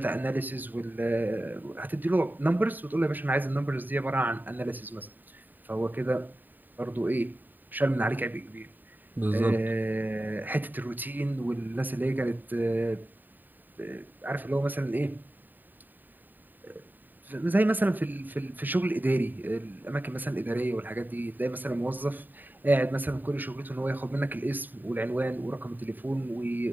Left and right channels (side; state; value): left; late; 0.089 ms